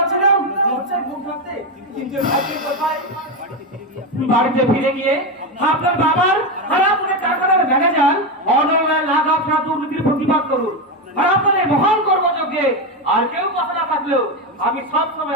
লজ্জায় মুখ ঢাকতে। কিন্তু ভাগ্যের কোথায় বাড়িতে ফিরে গিয়ে আপনার বাবার হারাপুরে টাকার ম্যানেজার অনলাইন লাখ আপনার দুর্নীতির প্রতিবাদ করুন। আর আপনাদের মহান কর্মযোগ্যে আর কেউ কথা না থাকলেও আমি সব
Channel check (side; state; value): both; normal; correlation 0.11